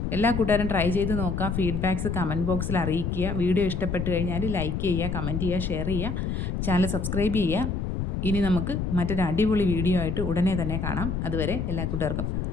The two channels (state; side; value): noise; left; rumble, 2 dB below the sound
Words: എല്ലാ കൂട്ടുകാരും ട്രൈ ചെയ്ത് നോക്കുക. ഫീഡ്ബാക്ക്സ് കമൻറ്റ് ബോക്സിൽ അറിയിക്കുക. വീഡിയോ ഇഷ്ടപ്പെട്ട് കഴിഞ്ഞാൽ ലൈക്ക് ചെയ്യുക, കമൻറ്റ് ചെയ്യുക, ഷെയർ ചെയ്യുക, ചാനൽ സബ്സ്ക്രൈബ് ചെയ്യുക. ഇനി നമുക്ക് മറ്റൊരു അടിപൊളി വീഡിയോ ആയിട്ട് ഉടനെ തന്നെ കാണാം. അതുവരെ എല്ലാ കൂട്ടുകാർക്കും